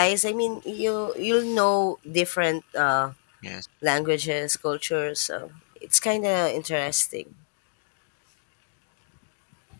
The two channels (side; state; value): right; silent; digital silence